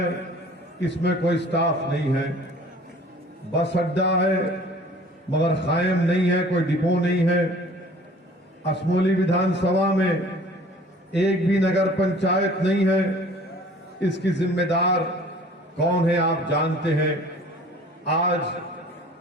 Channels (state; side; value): normal; both; correlation 0.49